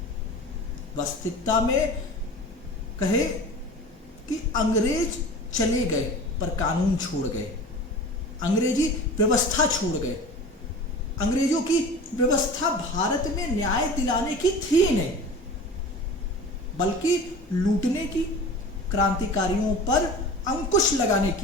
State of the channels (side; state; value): both; normal; correlation 0.37